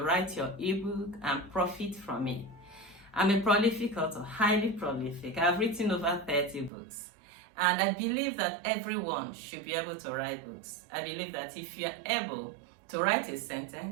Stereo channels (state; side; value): drops out; left; at 6.7 s